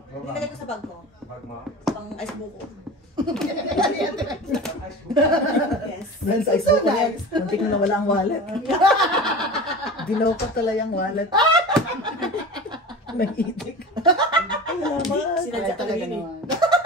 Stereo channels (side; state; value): both; normal; correlation 0.33